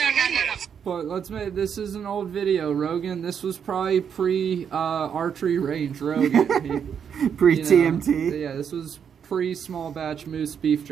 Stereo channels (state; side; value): quieter; left; 7.6 dB